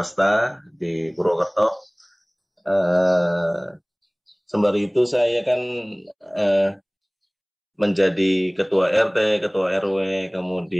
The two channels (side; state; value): both; identical; correlation 1.00